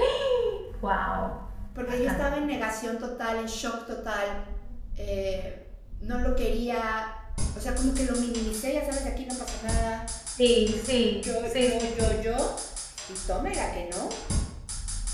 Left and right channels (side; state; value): both; identical; correlation 1.00